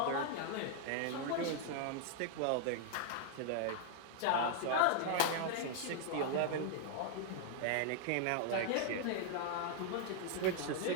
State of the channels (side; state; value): both; different; correlation 0.00